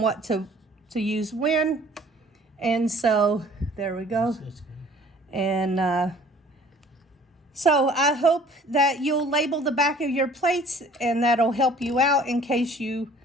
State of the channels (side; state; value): both; normal; correlation 0.53